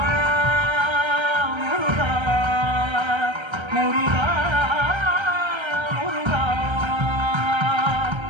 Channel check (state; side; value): late; left; 1.3 ms